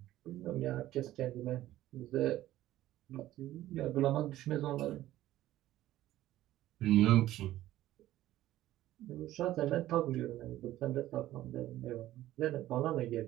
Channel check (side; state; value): left; quieter; 14.5 dB